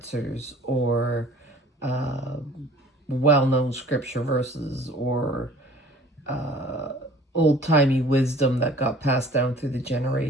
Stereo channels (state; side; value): normal; both; correlation 0.50